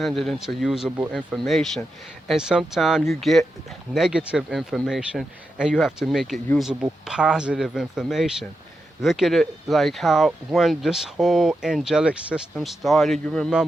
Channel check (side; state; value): both; normal; correlation 0.87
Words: it into usable information. And sometimes you get negative information and you have to make it usable, positive information. Look at it like how when this whole angelic system started, you